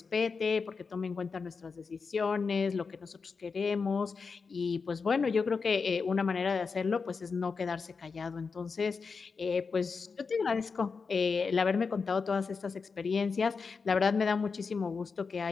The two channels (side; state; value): right; quieter; 5.0 dB